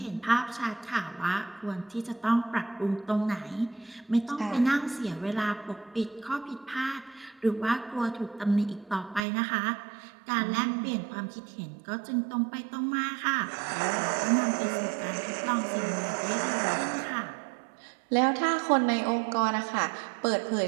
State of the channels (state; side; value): drops out; left; at 9.2 s